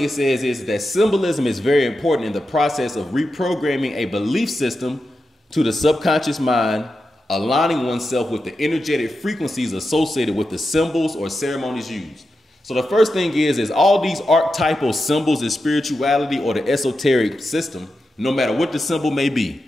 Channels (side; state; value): both; normal; correlation 0.89